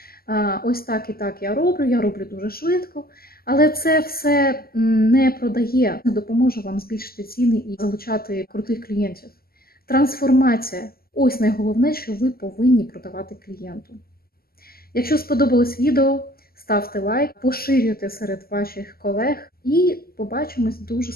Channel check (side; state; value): right; late; 0.44 ms